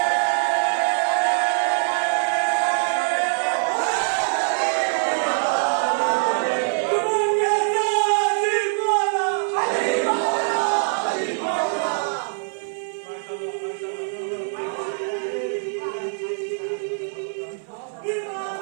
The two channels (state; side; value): silent; left; 63 dB below the other